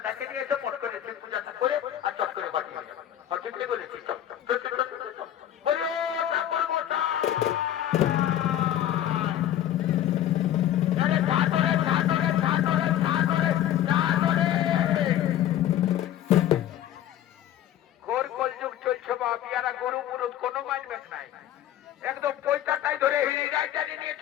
ডাকে নিয়ে এসে পট করে শিব পূজাটা করে আর চট করে বাড়িয়ে যাবো। ঠিকই বলেছিস। গরু মুরুদ কোনো মানবেন নাই, একদম পয়সাটাই ধরে হিড়ি রাজধানী নিয়ে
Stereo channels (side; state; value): right; quieter; 11.7 dB